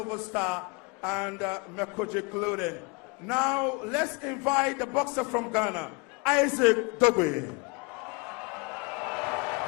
Star, and Mekoji Clothing. Now, let's invite the boxer from Ghana, Isaac Dogbe.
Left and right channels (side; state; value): right; quieter; 30.1 dB